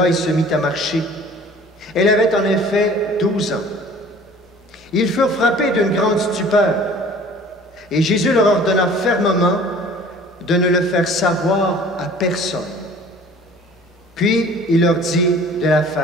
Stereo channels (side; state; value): both; normal; correlation 0.48